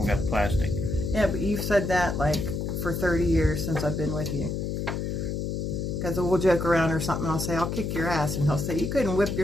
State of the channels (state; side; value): noise; left; hum, 2 dB below the sound